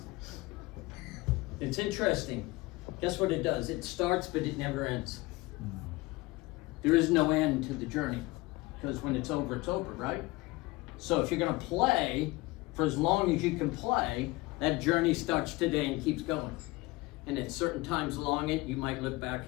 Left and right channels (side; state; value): right; quieter; 21.5 dB